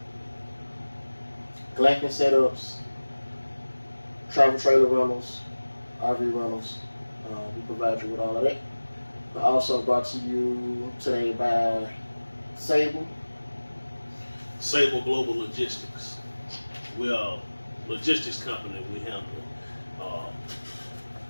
glamping setups, travel trailer rentals, RV rentals. We provide you with all of that. We're also brought to you today by Sable. Sable Global Logistics. We are a logistics company. We handle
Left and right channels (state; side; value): inverted; both; correlation -1.00